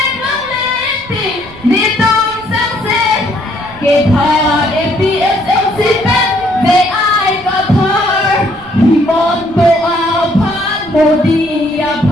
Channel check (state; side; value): noise; right; rumble, 22 dB below the sound